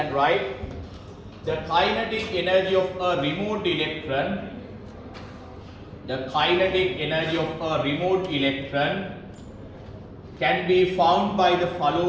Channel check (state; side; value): identical; both; correlation 1.00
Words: right. The kinetic energy of a removed electron. The kinetic energy of a removed electron can be found by the